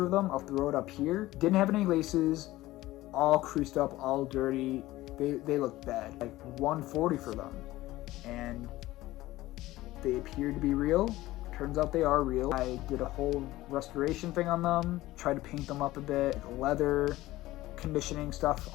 of them, I'll throw it up here. Didn't have any laces. all creased up, all dirty. They look bad. Like $140 for them, and they appear to be real. Turns out they are real. I did a whole restoration thing on them, tried to paint them up a bit, leather, conditioning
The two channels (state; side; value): quieter; right; 17.1 dB